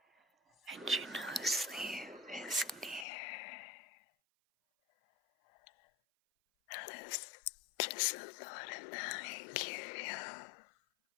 and you know sleep is near. How does just the thought of that make you feel?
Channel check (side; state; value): right; drops out; at 3.1 s